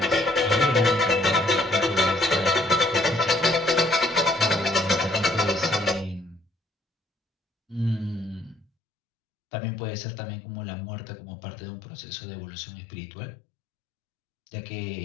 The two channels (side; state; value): right; drops out; at 8.7 s